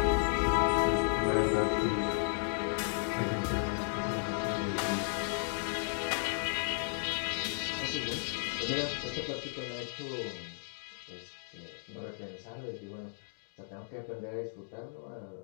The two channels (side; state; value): right; silent; digital silence